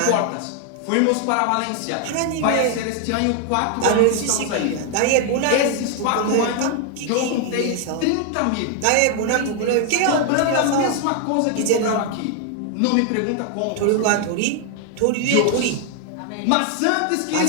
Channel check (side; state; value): both; different; correlation 0.00